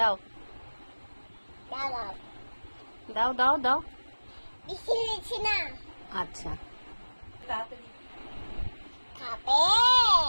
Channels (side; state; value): both; inverted; correlation -1.00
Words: দাও দাও দাও। বেশি হয়েছে না? আচ্ছা তাড়াতাড়ি খাবে?